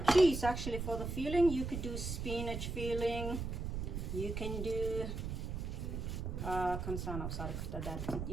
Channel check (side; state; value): right; noise; rumble, 4 dB below the sound